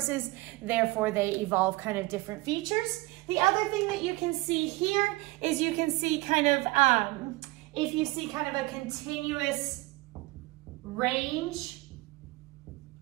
therefore they evolve kind of different features. The other thing that you can see here is you can see kind of, if you see kind of a continuous range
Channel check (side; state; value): left; quieter; 21.7 dB